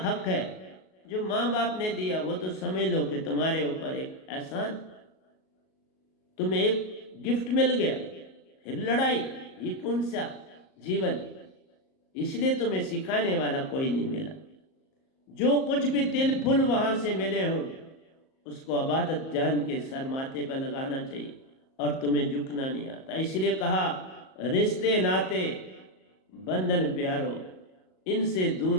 है। जो माँ बाप ने दिया वो तो समझ लो कि तुम्हारे ऊपर एक एहसान, तुम्हें एक गिफ्ट मिल गया, फिर लड़ाई, ये कौन सा जीवन। इसलिए तुम्हें सिखाने वाला कोई नहीं मिला। जो कुछ भी तिल फुल वहां से मिले हो उसको अबादत जान के सर माथे पर लगाना चाहिए, और तुम्हें झुकना नहीं आता। इसलिए कहा रिश्ते नाते बंधन प्यारो, इनसे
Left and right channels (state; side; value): late; right; 38 ms